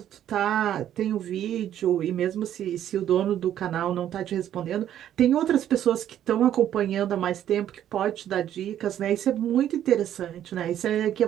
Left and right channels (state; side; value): quieter; left; 11.0 dB